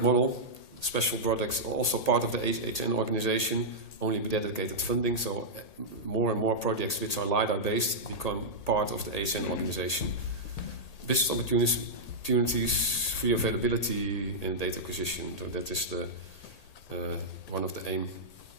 model. Special products are also part of the HN organization, only with dedicated funding. So more and more projects which are LiDAR based become part of the HN organization. Business opportunities free availability in data acquisition. So that is the one of the aim.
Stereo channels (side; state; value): right; late; 1.8 ms